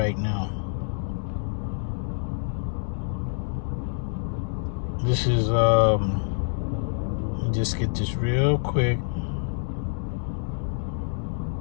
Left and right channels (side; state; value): right; silent; digital silence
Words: now. This is let me just get this real quick.